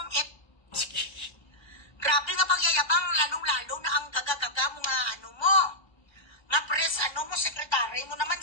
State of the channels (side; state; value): right; late; 1.3 ms